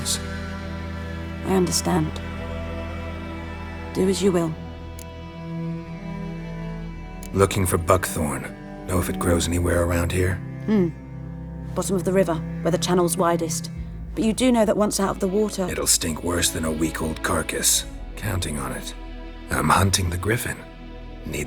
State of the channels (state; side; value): identical; both; correlation 1.00